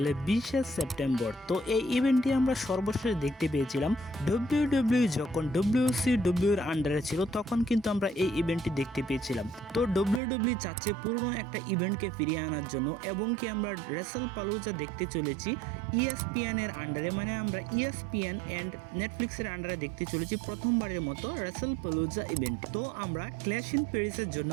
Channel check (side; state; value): left; drops out; at 10.2 s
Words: 20শে সেপ্টেম্বর। তো এই ইভেন্টটি আমরা সর্বশেষ দেখতে পেয়েছিলাম WWE যখন WCW এর আন্ডারে ছিল, তখন কিন্তু আমরা এই ইভেন্টটি দেখতে পেয়েছিলাম। তো WWE চাচ্ছে পুরনো একটা ইভেন্টকে ফিরিয়ে আনার জন্য, এবং কি আমরা রাসেল পালুজা দেখতে চলেছি ESPN এর আন্ডারে, মানে আমরা ESPN অ্যান্ড নেটফ্লিক্সের আন্ডারে দেখতে চলেছি প্রথমবারের মতো রাসেল পালুজা ইভেন্ট। তো আমরা ক্ল্যাশ ইন প্যারিসের জন্য